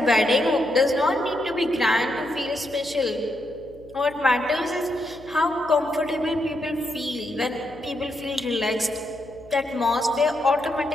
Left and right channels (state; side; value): noise; left; hum, 23 dB below the sound